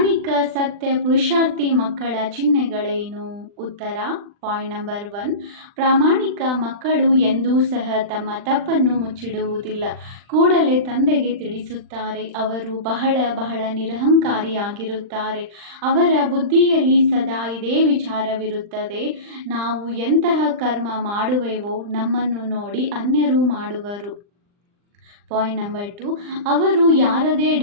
ಸತ್ಯ ಪುರುಷಾರ್ಥಿ ಮಕ್ಕಳ ಚಿಹ್ನೆಗಳೇನು? ಉತ್ತರ. ಪಾಯಿಂಟ್ ನಂಬರ್ 1, ಪ್ರಾಮಾಣಿಕ ಮಕ್ಕಳು ಎಂದೂ ಸಹ ತಮ್ಮ ತಪ್ಪನ್ನು ಮುಚ್ಚಿಡುವುದಿಲ್ಲ. ಕೂಡಲೇ ತಂದೆಗೆ ತಿಳಿಸುತ್ತಾರೆ. ಅವರು ಬಹಳ ಬಹಳ ನಿರಹಂಕಾರಿಯಾಗಿರುತ್ತಾರೆ. ಅವರ ಬುದ್ಧಿಯಲ್ಲಿ ಸದಾ ಇದೇ ವಿಚಾರವಿರುತ್ತದೆ, ನಾವು ಎಂತಹ ಕರ್ಮ ಮಾಡುವೆವೋ ನಮ್ಮನ್ನು ನೋಡಿ ಅನ್ಯರು ಮಾಡುವರು. ಪಾಯಿಂಟ್ ನಂಬರ್ 2, ಅವರು ಯಾರದೇ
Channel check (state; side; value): late; left; 39 ms